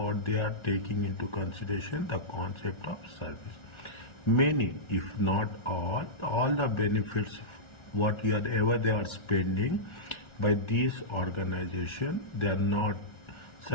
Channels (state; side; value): late; right; 1.4 ms